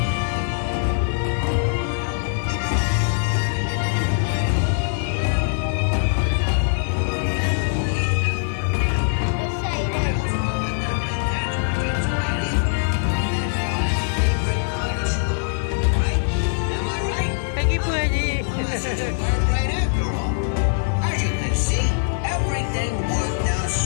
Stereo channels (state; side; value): silent; right; digital silence